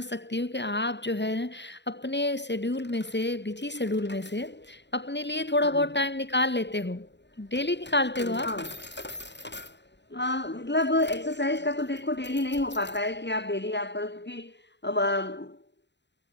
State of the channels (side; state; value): right; late; 0.51 ms